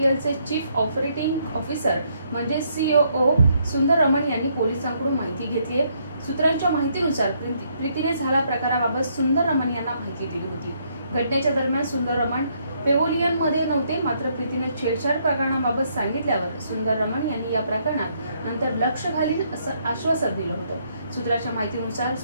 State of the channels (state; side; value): inverted; both; correlation -0.72